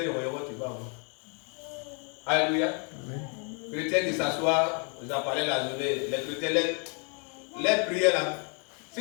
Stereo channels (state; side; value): quieter; right; 38.4 dB